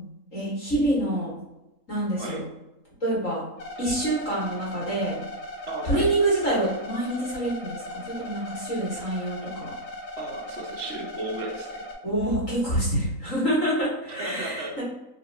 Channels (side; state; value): right; late; 3.8 ms